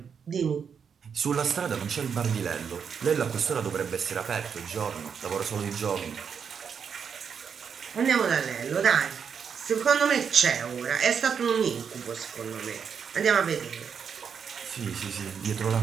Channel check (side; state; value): left; quieter; 6.8 dB